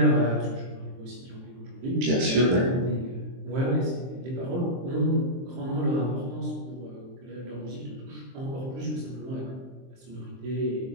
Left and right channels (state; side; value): late; left; 23 ms